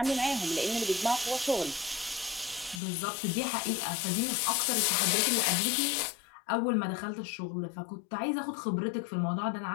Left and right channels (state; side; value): drops out; right; at 2.8 s